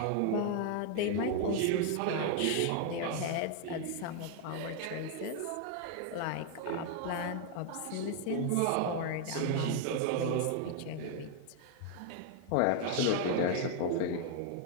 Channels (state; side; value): different; both; correlation 0.00